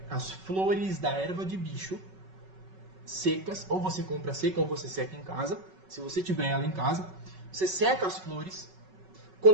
as flores da erva de bicho secas, ou você compra seca ou você seca em casa, se você tiver ela em casa, você seca as flores,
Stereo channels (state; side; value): late; left; 5.3 ms